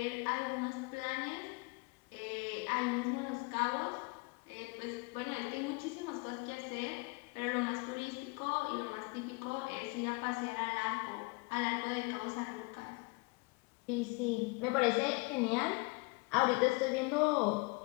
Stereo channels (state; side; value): quieter; right; 28.6 dB